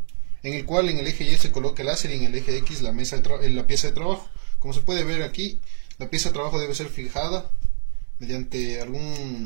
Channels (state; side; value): silent; left; digital silence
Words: en el cual en el eje Y se coloca el láser y en el eje X la pieza de trabajo. Como se puede ver aquí, la pieza de trabajo debe ser fijada mediante